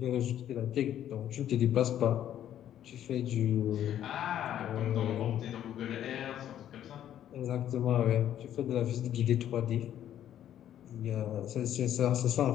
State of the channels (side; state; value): right; quieter; 11.0 dB